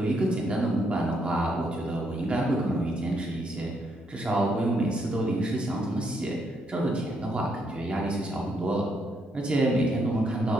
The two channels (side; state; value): both; normal; correlation 0.75